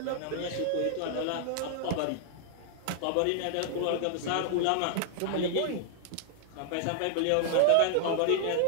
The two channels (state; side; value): different; both; correlation 0.00